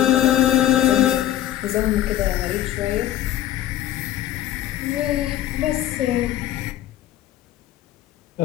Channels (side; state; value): right; quieter; 12.4 dB